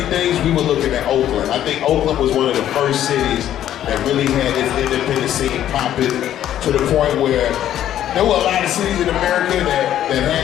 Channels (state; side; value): quieter; right; 11.5 dB